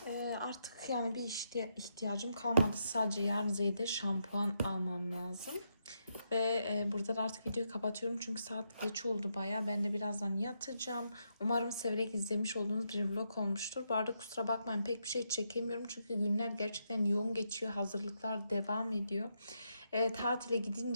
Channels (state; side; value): inverted; both; correlation -0.81